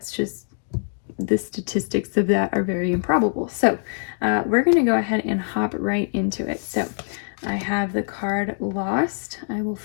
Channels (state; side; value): silent; right; digital silence